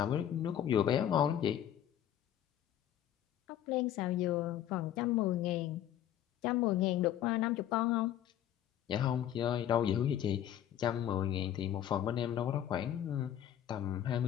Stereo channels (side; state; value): right; quieter; 11.0 dB